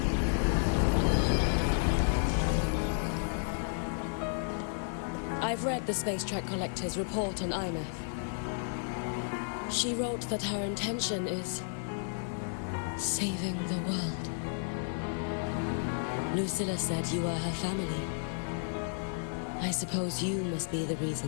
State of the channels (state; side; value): silent; right; digital silence